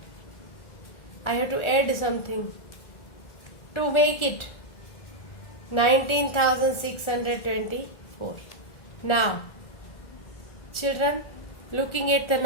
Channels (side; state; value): right; late; 1.4 ms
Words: I have to add something to make it 19,624. Now, children, looking at the